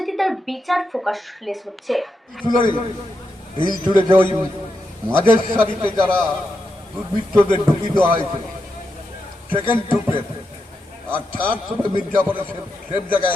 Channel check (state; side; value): normal; both; correlation 0.86